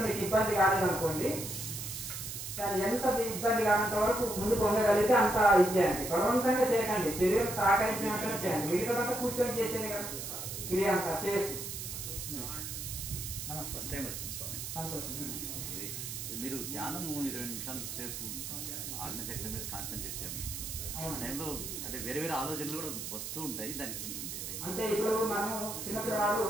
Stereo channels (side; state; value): right; noise; hiss, 6 dB below the sound